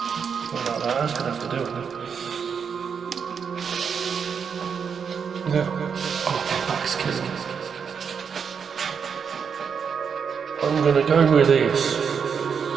That's going to have to do it. Yeah. Oh, that's killing me. I'm going to go with this.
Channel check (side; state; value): left; quieter; 6.6 dB